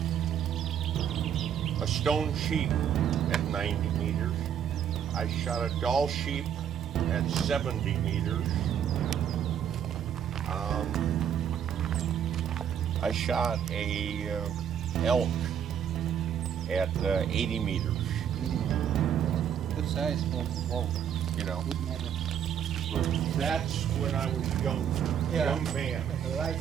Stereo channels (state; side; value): quieter; left; 8.9 dB